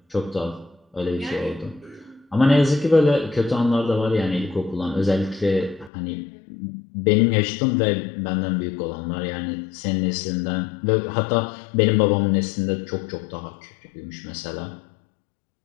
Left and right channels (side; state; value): right; drops out; at 5.9 s